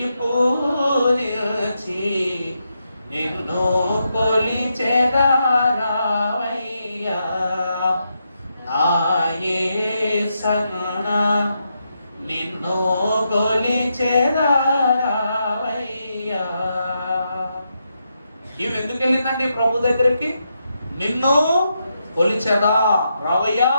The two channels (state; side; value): inverted; both; correlation -0.83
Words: పూజించి నిన్ను కొలిచెదరావయ్యా నా యేసన్నా, నిన్ను కొలిచెదరావయ్యా. ఈమె ఎందుకు వెళ్ళిందండి ప్రభు దగ్గరికి? నిన్ను కొలిచెదా రావయ్యా,